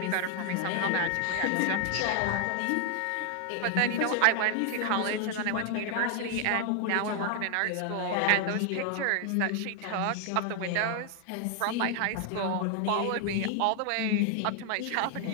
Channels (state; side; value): different; both; correlation 0.00